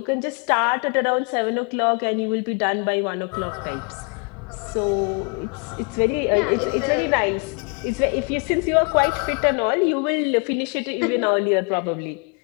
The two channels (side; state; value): right; quieter; 34.4 dB